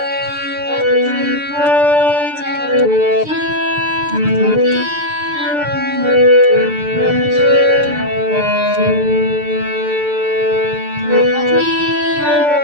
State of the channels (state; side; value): late; left; 6.7 ms